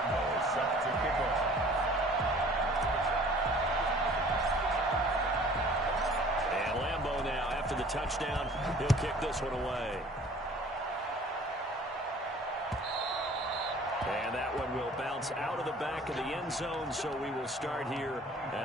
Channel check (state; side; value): normal; both; correlation 0.50